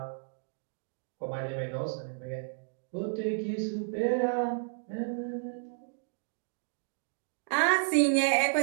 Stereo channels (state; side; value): silent; left; digital silence